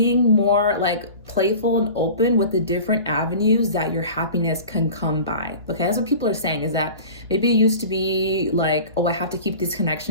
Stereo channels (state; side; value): inverted; both; correlation -0.38